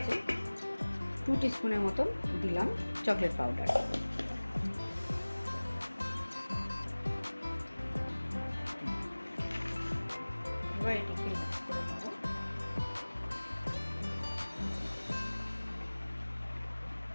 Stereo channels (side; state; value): both; inverted; correlation -1.00